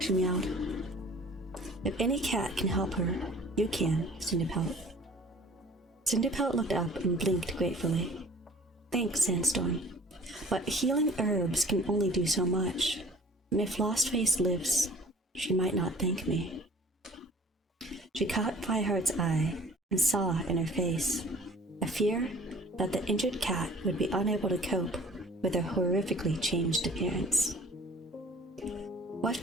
meowed. If any cat can help her, you can, Cinderpelt. Cinderpelt looked up and blinked gratefully. Thanks, Sandstorm. But healing herbs can only do so much, and if Lostface lives, she might not thank me. She caught Fireheart's eye and saw in her face a fear that the injured cat would be unable to cope with her horrifically changed appearance. What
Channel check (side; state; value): both; normal; correlation 0.49